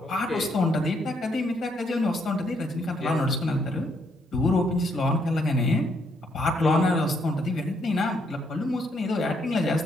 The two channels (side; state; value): both; normal; correlation 0.73